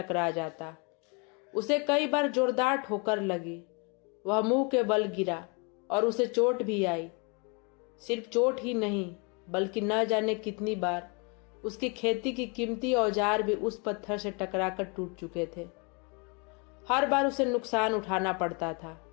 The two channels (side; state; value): right; quieter; 32.9 dB